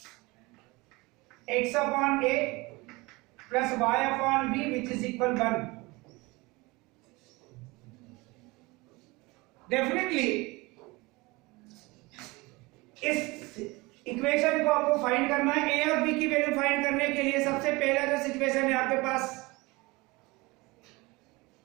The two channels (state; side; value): quieter; left; 23.5 dB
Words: x upon a plus y upon b which is equal 1। Definitely इस इक्वेशन को आपको फाइंड करना है। ए और बी की वैल्यू फाइंड करने के लिए सबसे पहला जो सिचुएशन है आपके पास,